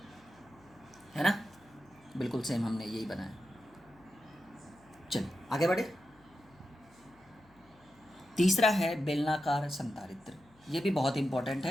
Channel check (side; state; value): left; noise; hum, 29 dB below the sound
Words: है ना? बिल्कुल सेम हमने यही बनाया। चलिए आगे बढ़े। तीसरा है बेलनाकार संधारित्र। ये भी बहुत इंपॉर्टेंट